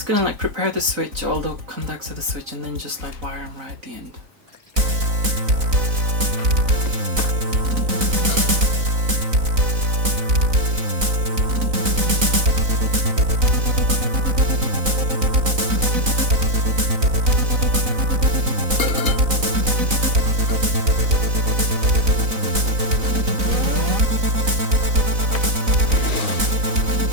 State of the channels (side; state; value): left; late; 4.0 ms